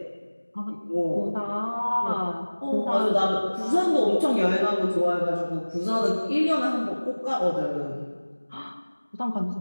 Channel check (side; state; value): both; inverted; correlation -1.00